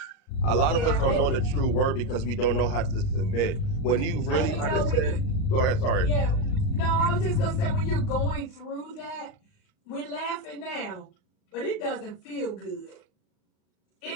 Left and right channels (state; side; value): late; right; 38 ms